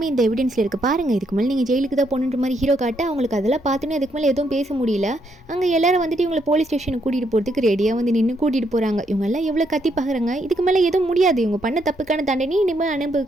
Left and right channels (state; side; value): normal; both; correlation 0.75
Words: இந்த எவிடன்ஸில் இருக்குது பாருங்கள், இதுக்கு மேலே நீங்கள் ஜெயிலுக்கு தான் போகணுன்ற மாதிரி ஹீரோ காட்ட அவங்களுக்கு அதெல்லாம் பார்த்துன்னு அதுக்கு மேலே எதுவும் பேச முடியல. அங்கே எல்லாரும் வந்துட்டு இவங்களை போலீஸ் ஸ்டேஷனுக்கு கூட்டிகிட்டு போகிறதுக்கு ரெடியாக வந்து நின்று கூட்டிகிட்டு போகிறாங்க. இவங்க எல்லாம் எவ்வளோ கத்தி பார்க்குறாங்க, இதுக்கு மேலே எதுவும் முடியாது, இவங்க பண்ண தப்புக்கான தண்டனை இனிமேல்